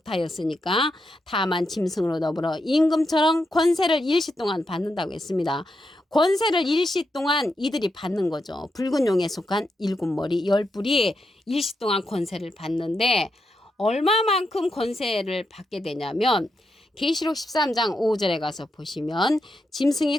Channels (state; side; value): normal; both; correlation 0.84